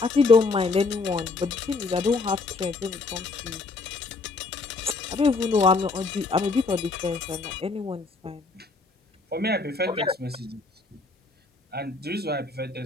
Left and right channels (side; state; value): right; quieter; 3.9 dB